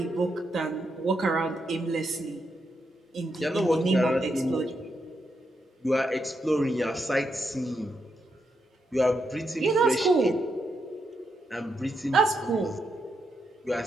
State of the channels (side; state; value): both; normal; correlation 0.82